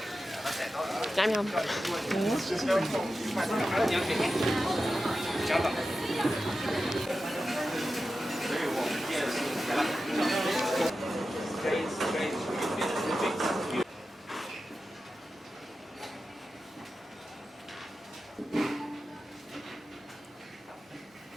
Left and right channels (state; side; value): normal; both; correlation 0.92